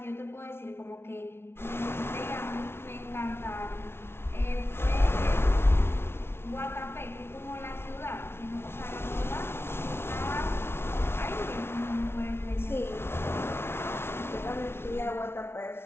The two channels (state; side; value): late; right; 0.12 ms